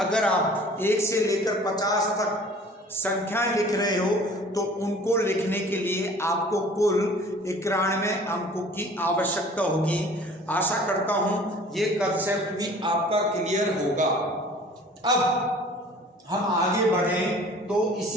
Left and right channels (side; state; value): both; normal; correlation 0.48